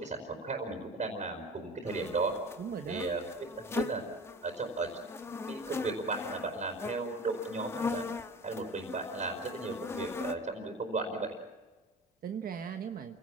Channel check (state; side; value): normal; both; correlation 0.37